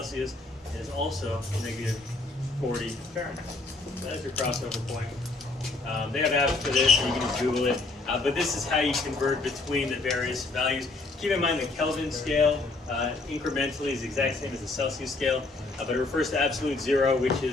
It is also negative 40 Fahrenheit. That's your crossover point. They have apps for this, and you can just Google it. But this is how you convert between the various values. Keep in mind the Kelvin scale incrementally is the exact same as the Celsius scale, but it refers to absolute 0, which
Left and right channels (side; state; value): right; quieter; 3.4 dB